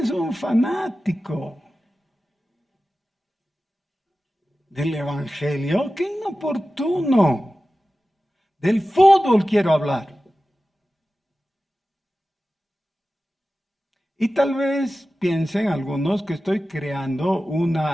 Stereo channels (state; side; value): normal; both; correlation 0.95